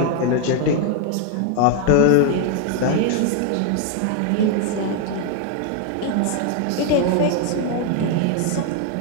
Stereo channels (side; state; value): both; different; correlation 0.01